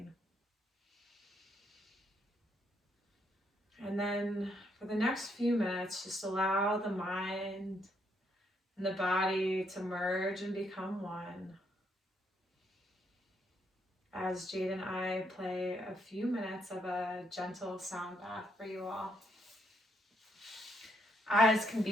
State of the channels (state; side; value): normal; both; correlation 0.74